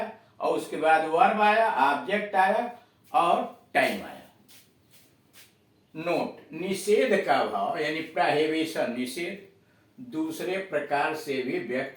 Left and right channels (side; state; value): both; identical; correlation 1.00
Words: और उसके बाद वर्ब आया, ऑब्जेक्ट आया और टाइम आया. नोट, निषेध का भाव यानी प्रोहिबिशन, निषेध दूसरे प्रकार से भी